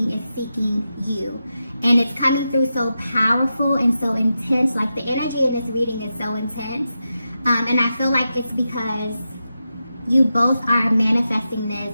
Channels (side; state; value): both; inverted; correlation -0.89